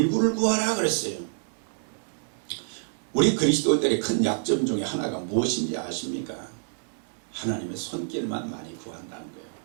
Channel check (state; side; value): silent; left; 60 dB below the other